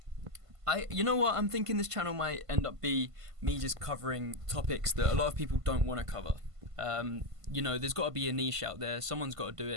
know what? I'm thinking this channel might end up be me just covering topics that a lot of people don't want to cover. There's got to be a niche out there. Someone's got to do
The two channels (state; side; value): late; left; 1.5 ms